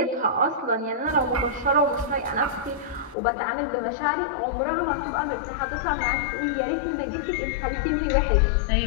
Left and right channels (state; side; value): drops out; right; at 3.2 s